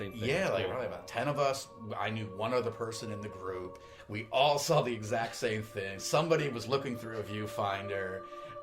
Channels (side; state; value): both; identical; correlation 1.00